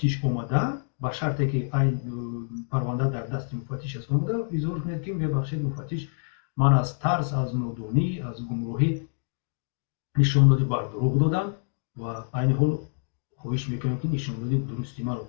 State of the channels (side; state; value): right; silent; digital silence